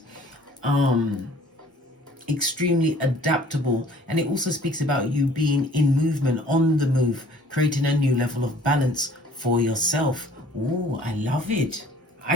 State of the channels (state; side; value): normal; both; correlation 0.53